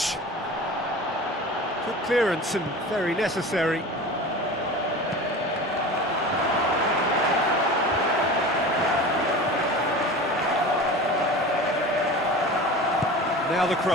Good clearance and very necessary. Now the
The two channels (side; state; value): both; normal; correlation 0.35